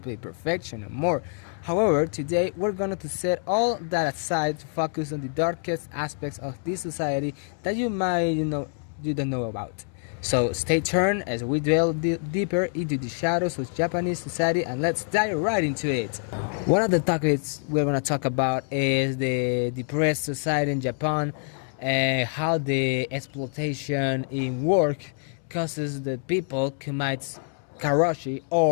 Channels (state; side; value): silent; right; 61 dB below the other